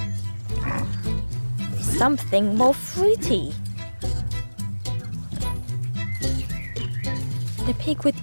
something more fruity. The pig would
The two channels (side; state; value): both; inverted; correlation -1.00